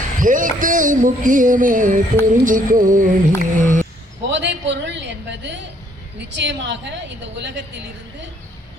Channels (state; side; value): normal; both; correlation 0.66